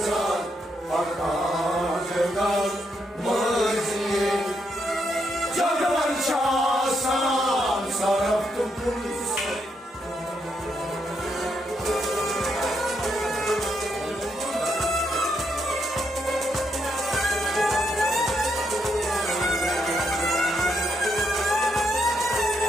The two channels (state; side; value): normal; both; correlation 0.79